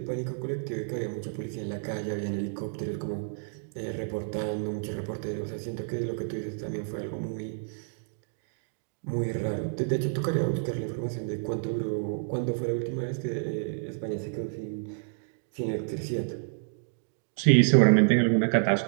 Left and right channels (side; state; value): left; silent; digital silence